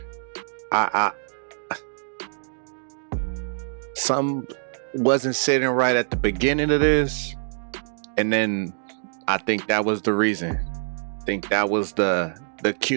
Some wasn't sitting right at the beginning of this, and then I think that was the reason. I think that was the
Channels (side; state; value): left; silent; digital silence